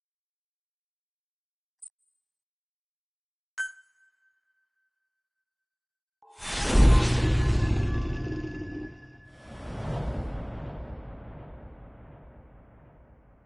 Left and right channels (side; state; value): both; identical; correlation 1.00